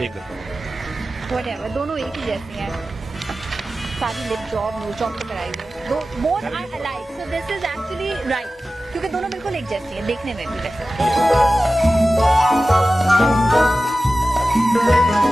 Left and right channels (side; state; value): both; normal; correlation 0.95